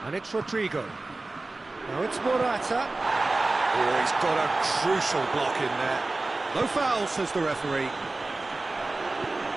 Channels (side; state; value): left; quieter; 3.2 dB